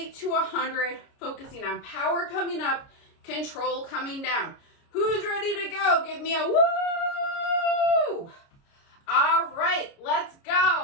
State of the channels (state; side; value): late; right; 29 ms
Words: to 100, focusing on power coming up, control coming down. Who's ready to go? Give me a woo! All right, let's